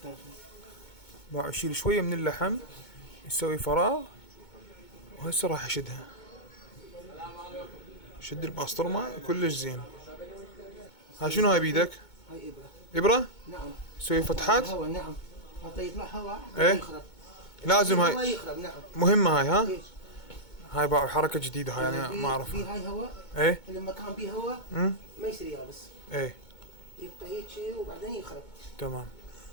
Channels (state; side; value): late; right; 2.2 ms